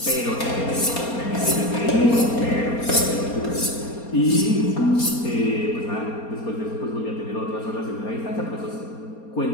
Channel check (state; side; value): late; right; 4.3 ms